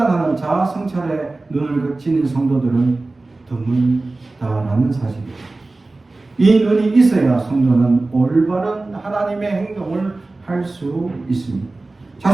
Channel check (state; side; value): quieter; left; 3.2 dB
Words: 자아 성찰의 눈을 가진 성도들은 드물다라는 사실입니다. 이 눈이 있어야 성도는 올바른 하나님의 행동을 할 수 있습니다.